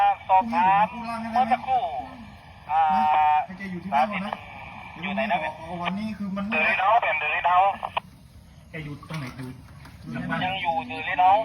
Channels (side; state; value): both; identical; correlation 1.00